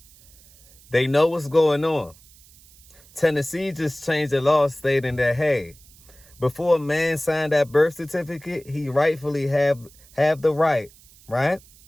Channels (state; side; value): noise; right; hiss, 26 dB below the sound